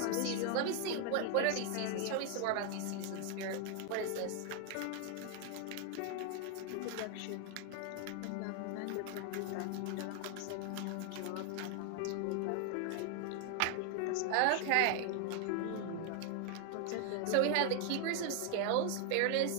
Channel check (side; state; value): both; different; correlation 0.00